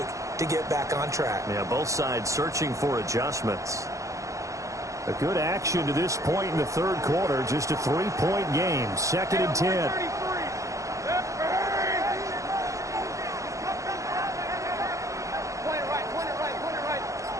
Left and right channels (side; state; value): left; late; 0.15 ms